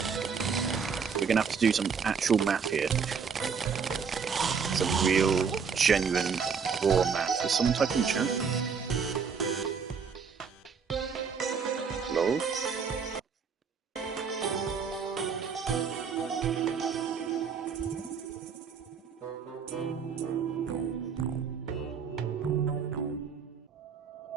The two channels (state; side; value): quieter; left; 6.1 dB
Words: We're gonna have to do some actual math here. Some real, genuine, raw math. Is someone typing in the chat? Hello?